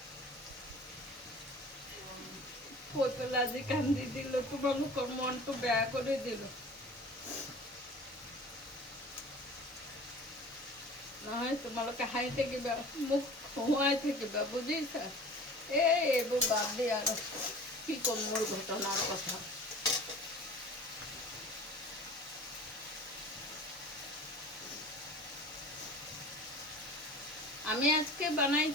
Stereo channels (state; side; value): normal; both; correlation 0.42